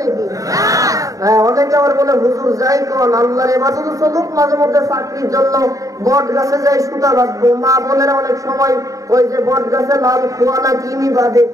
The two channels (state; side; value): late; left; 0.16 ms